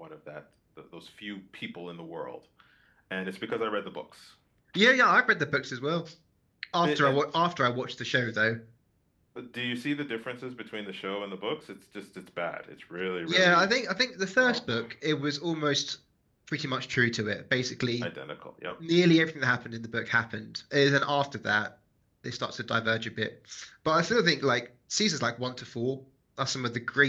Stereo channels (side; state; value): both; identical; correlation 1.00